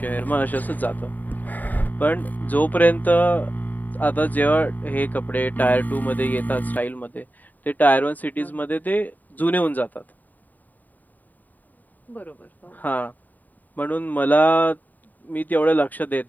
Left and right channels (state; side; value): late; right; 0.084 ms